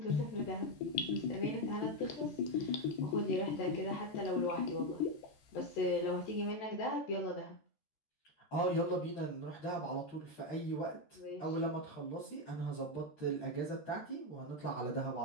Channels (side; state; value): right; late; 13 ms